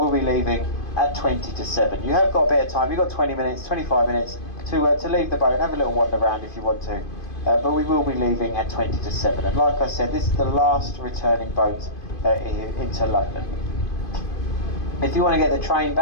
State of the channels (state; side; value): late; right; 2.5 ms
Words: be leaving at 20 to 7. You have got a bit of time. You've got 20 minutes, 25 minutes to leave the boat and have a little wander around if you want to. But we will be leaving at 20 to 7. And like I said, this is the last returning boat into London. If you want to get the train